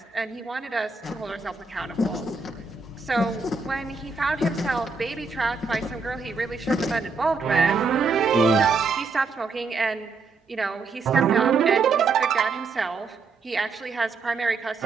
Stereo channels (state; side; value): quieter; left; 4.4 dB